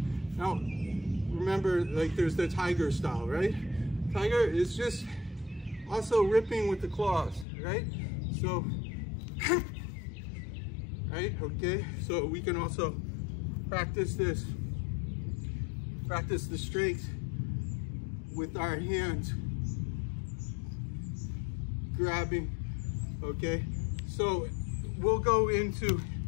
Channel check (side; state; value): right; drops out; at 7.5 s